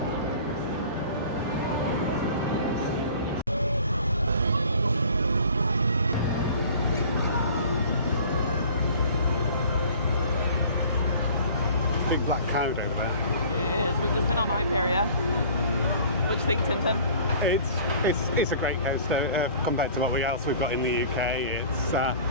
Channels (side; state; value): both; inverted; correlation -0.47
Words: Big black cow over there. It is. We've just been on Hyperia. What do you think, Tintin? It's a great coaster compared to what else we've got in the UK. It's